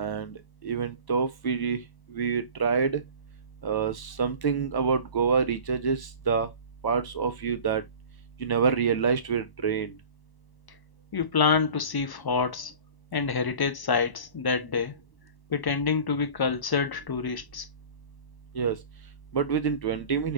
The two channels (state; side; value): late; right; 1.0 ms